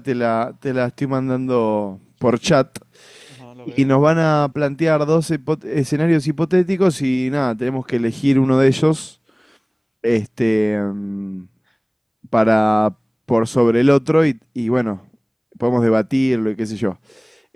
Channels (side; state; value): both; identical; correlation 1.00